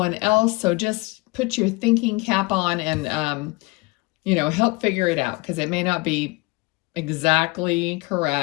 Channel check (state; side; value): quieter; right; 24.6 dB